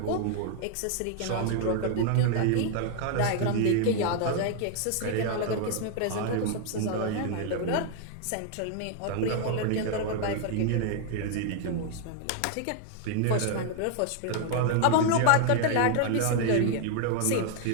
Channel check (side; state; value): both; different; correlation 0.00